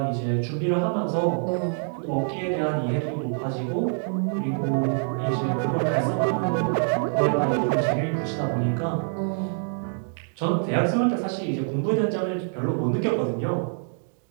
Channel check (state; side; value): silent; left; 61 dB below the other